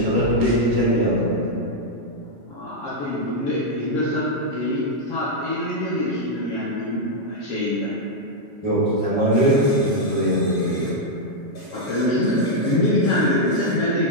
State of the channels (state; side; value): late; right; 7.2 ms